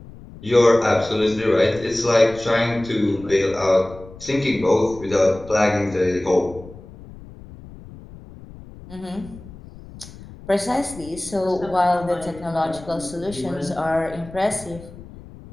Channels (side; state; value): left; noise; rumble, 18 dB below the sound